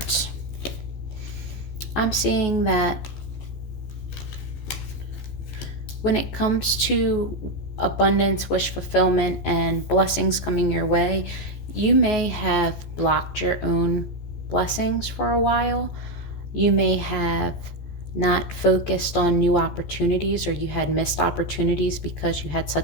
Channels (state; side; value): late; right; 14 ms